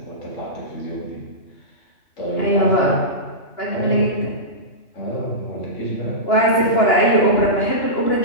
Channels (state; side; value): late; right; 2.9 ms